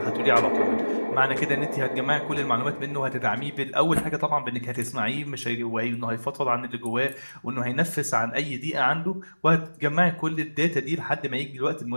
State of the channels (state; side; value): inverted; both; correlation -1.00